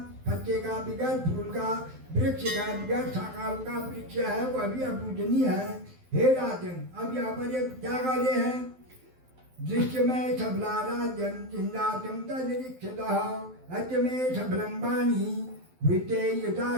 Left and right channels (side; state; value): left; late; 12 ms